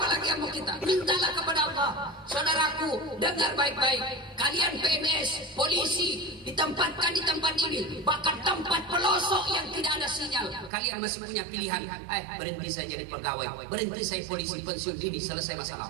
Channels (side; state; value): left; drops out; at 10.7 s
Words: lagi yang mau kita? Mintalah kepada Allah. Saudaraku, dengar baik-baik. Kalian PNS, polisi, ditempatkan di tempat ini, bahkan tempat pelosok yang tidak ada sinyal. Kalian masih punya pilihan. Berhenti saya jadi pegawai, berhenti saya polisi, pensiun dini, selesai masalah.